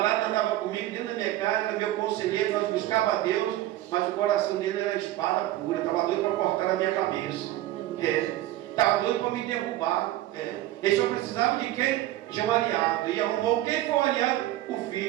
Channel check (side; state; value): left; quieter; 15.0 dB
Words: andava comigo dentro da minha casa, era meu conselheiro, nós buscávamos a Deus, mas o coração dele era espada pura, estava doido para cortar a minha cabeça. Estava doido para me derrubar. Ele só precisava de quem? De um aliado. E arrumou quem foi o aliado? O